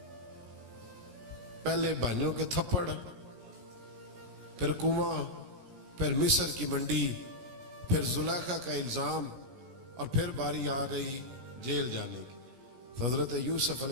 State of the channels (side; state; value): left; late; 16 ms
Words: پہلے بھائیوں کے تھپڑ، پھر کنواں، پھر مصر کی منڈی، پھر زلیخا کا الزام، اور پھر باری آ گئی جیل جانے کی۔ حضرت یوسف